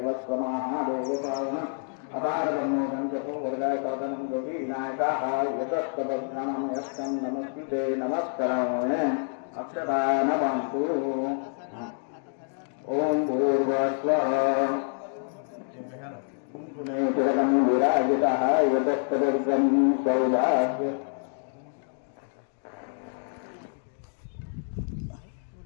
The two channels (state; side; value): silent; right; 57 dB below the other